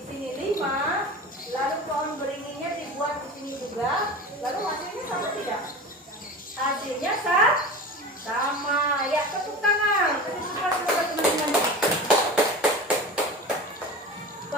sini 5, lalu pohon beringinnya dibuat di sini juga, lalu hasilnya sama tidak? Hasilnya sama. Ya, tepuk tangan. Teman-teman.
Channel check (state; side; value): normal; both; correlation 0.32